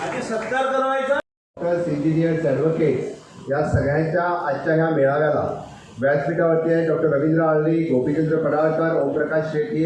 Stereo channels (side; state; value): both; identical; correlation 1.00